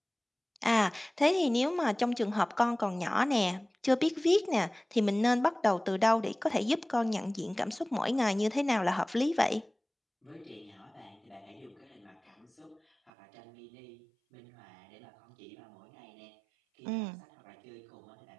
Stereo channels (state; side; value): drops out; left; at 13.1 s